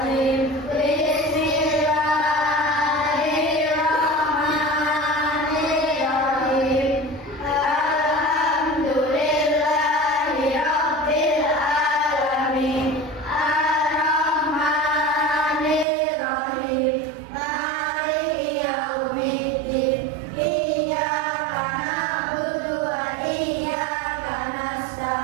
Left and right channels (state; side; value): drops out; left; at 15.9 s